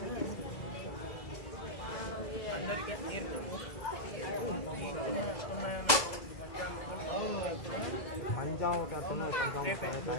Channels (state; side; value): late; right; 2.0 ms